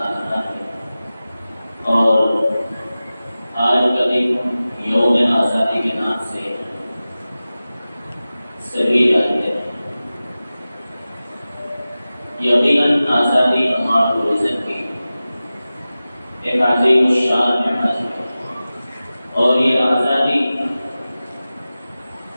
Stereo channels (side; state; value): both; inverted; correlation -0.96